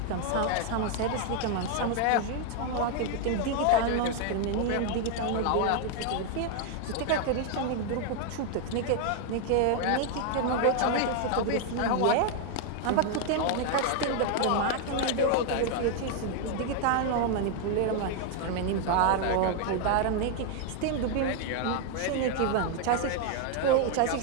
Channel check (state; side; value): different; both; correlation 0.00